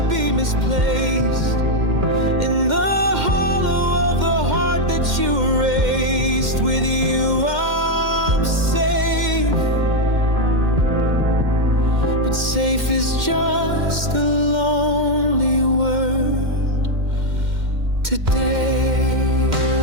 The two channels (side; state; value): left; late; 2.1 ms